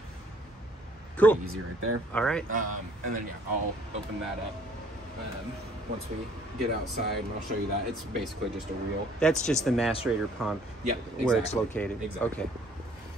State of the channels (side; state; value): both; normal; correlation 0.59